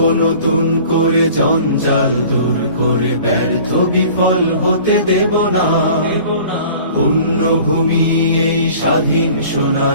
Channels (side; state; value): both; inverted; correlation -0.47